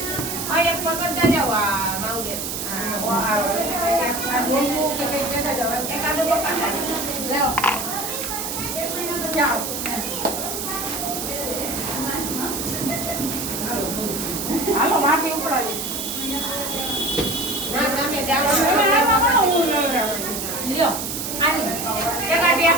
આ એક પકડતા જાવ આ માઉડે આ બોલવું કે કઈ કહેતા જાવ એકાદો પકડતા લેવો જાઓ હાલો માથે ઉપડાવી ના તમે જાઓ લ્યો આની એકા ટેપ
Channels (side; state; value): right; noise; hiss, 4 dB below the sound